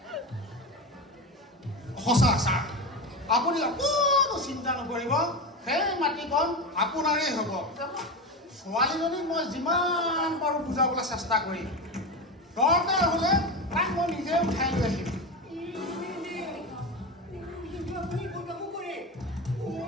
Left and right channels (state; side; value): normal; both; correlation 0.21